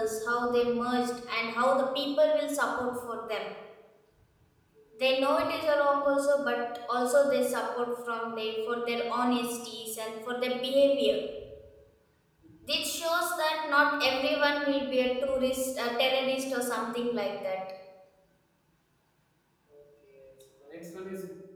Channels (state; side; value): identical; both; correlation 1.00